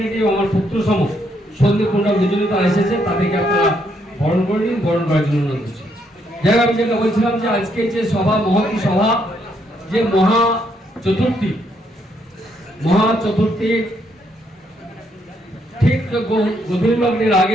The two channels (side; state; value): both; normal; correlation 0.74